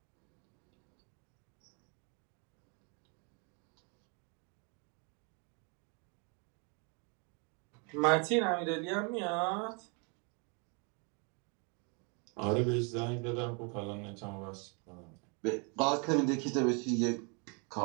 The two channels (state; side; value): quieter; left; 35.2 dB